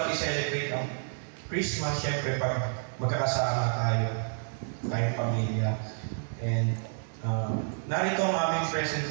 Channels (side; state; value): left; silent; digital silence